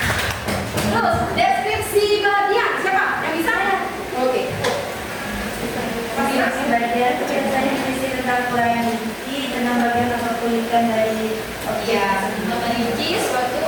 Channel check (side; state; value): both; identical; correlation 1.00